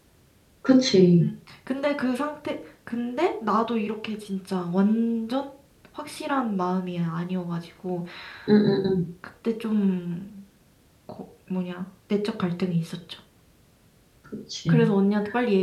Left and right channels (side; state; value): both; identical; correlation 1.00